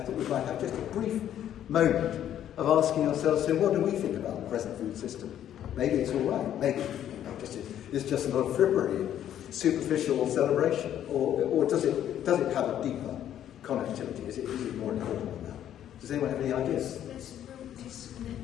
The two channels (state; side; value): quieter; right; 10.8 dB